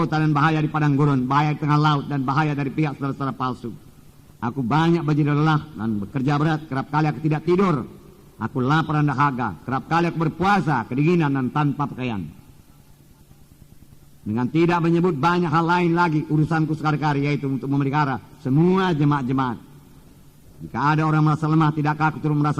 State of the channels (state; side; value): identical; both; correlation 1.00